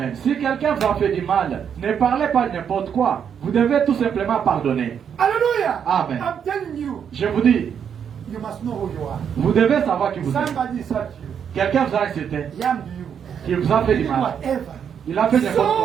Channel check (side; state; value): left; quieter; 7.9 dB